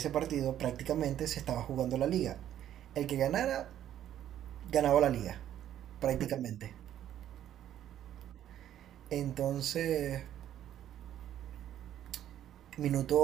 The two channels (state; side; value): quieter; left; 11.3 dB